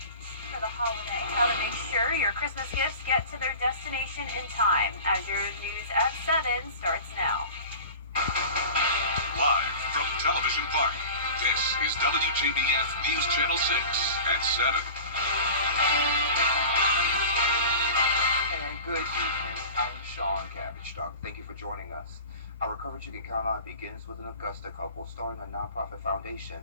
for the holiday. How to make sure your Christmas gifts get to their destination in time. As your news at 7 starts now. Live from Television Park, this is WJBF News Channel 6 at 7. And good evening. I'm Sean Cabbage Dog. Thank you for joining us. Our coverage you can count on begins with an Augusta couple starting a nonprofit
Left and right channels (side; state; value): both; inverted; correlation -0.36